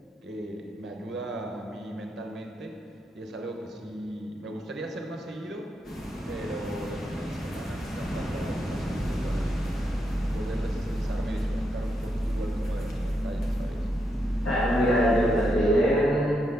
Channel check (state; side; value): normal; both; correlation 0.81